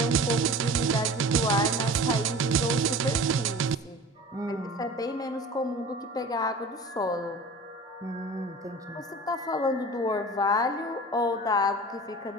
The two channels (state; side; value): normal; both; correlation 0.39